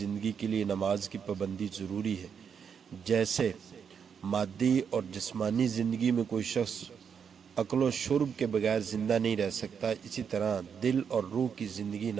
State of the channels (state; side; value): quieter; left; 7.0 dB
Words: کے لیے نماز کی پابندی ضروری ہے۔ جیسے مادی اور جسمانی زندگی میں کوئی شخص اکل و شرب کے بغیر زندہ نہیں رہ سکتا، اسی طرح دل اور روح کی زندگی